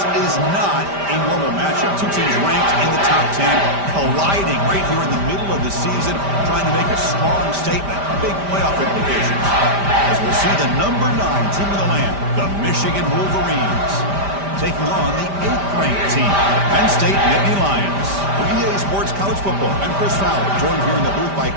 is not a normal matchup. Two teams ranked in the top 10, colliding right here in the middle of the season, trying to make a strong statement, big playoff implications. As we'll see the number 9 team in the land, the Michigan Wolverines, taking on the 8th-ranked team, the Penn State Nittany Lions. For EA Sports College Football, I'm Chris Fowler, joined here in the booth by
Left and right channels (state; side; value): late; left; 5.1 ms